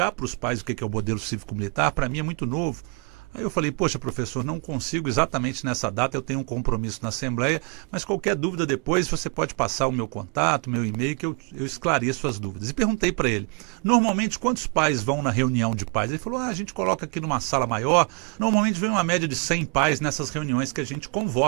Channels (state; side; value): quieter; left; 34.0 dB